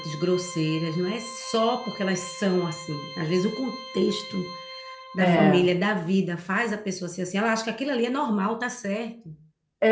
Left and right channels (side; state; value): both; identical; correlation 1.00